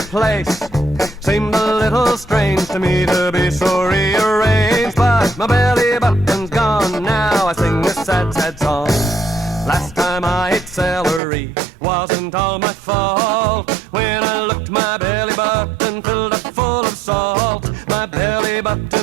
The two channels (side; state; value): left; drops out; at 11.2 s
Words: Seemed a little strange to me to be so rearranged, but my belly button's gone. Now I sing this sad, sad song. Last time I ate celery wasn't all my fault. When I looked, my belly button filled up full of salt. My belly